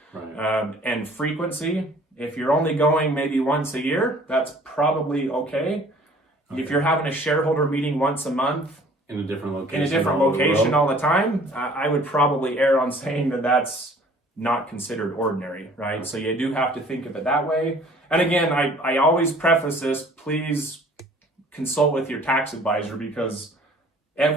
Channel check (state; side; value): normal; both; correlation 0.53